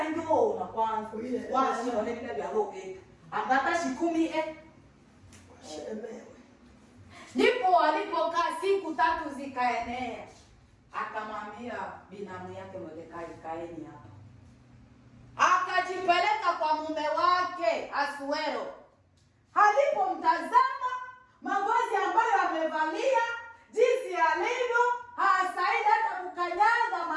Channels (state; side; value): identical; both; correlation 1.00